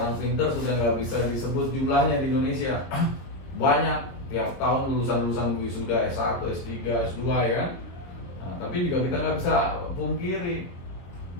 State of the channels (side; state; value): right; late; 22 ms